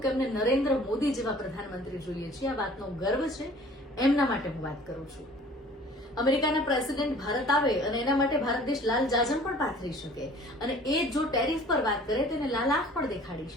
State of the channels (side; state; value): both; normal; correlation 0.50